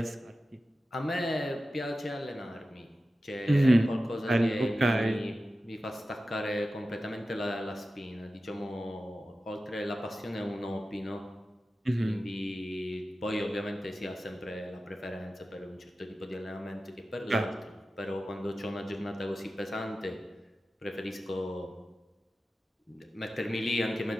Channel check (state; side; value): normal; both; correlation 0.94